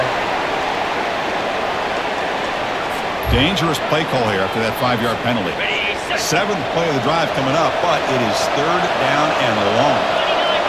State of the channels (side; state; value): both; identical; correlation 1.00